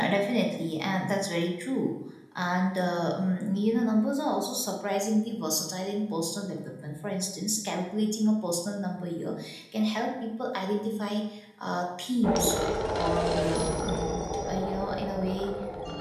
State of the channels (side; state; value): both; identical; correlation 1.00